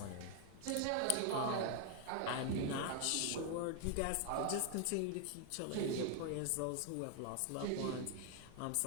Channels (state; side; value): different; both; correlation 0.00